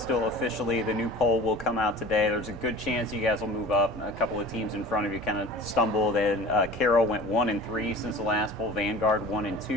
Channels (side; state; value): both; normal; correlation 0.40